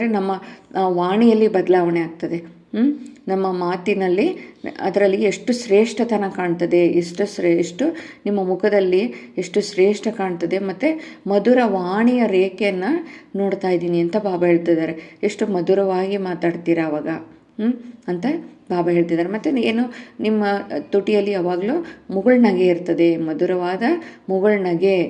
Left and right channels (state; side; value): identical; both; correlation 1.00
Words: ನಮ್ಮ ವಾಣಿಯಲ್ಲಿ ಬದಲಾವಣೆ ಆಗ್ತದೆ. ನಮ್ಮ ಮಾತಿನಲ್ಲಿ ಅದರಲ್ಲಿ ಎಷ್ಟು ಶ್ರೇಷ್ಠತನ ಕಾಣ್ತದೆ, ಎಷ್ಟು ನಿಮ್ಮ ಮುಖದಲ್ಲಿ ಎಷ್ಟು ಶ್ರೇಷ್ಠ ಕಾಣ್ತದೆ. ಮತ್ತು ಮಧುರ ವಾಣಿಯ ರೇಖೆಯನ್ನು ನೋಡ್ತಾ ಇದ್ದೀನಿ ಅಂತ ಬಾಬಾ ಹೇಳ್ತಿದ್ದಾರೆ. ಎಷ್ಟು ಮಧುರವಾಗಿ ಮಾತಾಡ್ತೀರಾ ಅವಾಗ ಅಂತ ಬಾಬಾ ಹೇಳ್ತಿದ್ದಾರೆ. ಮತ್ತು ಏನು, ನಿಮ್ಮ ತುಟಿಯಲ್ಲಿ ಯಾವಾಗಲೂ ಮುಗುಳ್ನಗೆ ಇರ್ತದೆ, ಮಧುರವಾದ